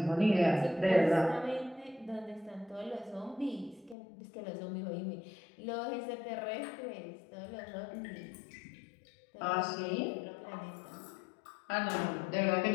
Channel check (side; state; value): right; drops out; at 4.0 s